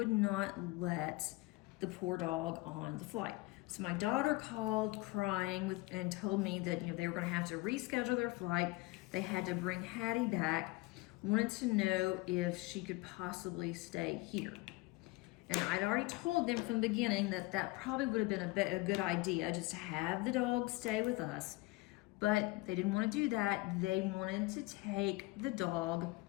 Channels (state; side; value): quieter; right; 22.1 dB